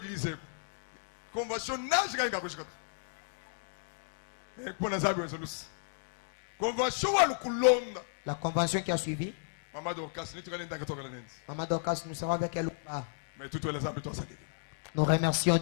La convention qui a suivi. Maman Dorcas, nous savons avec elle ou pas. Nous remercions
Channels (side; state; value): right; silent; digital silence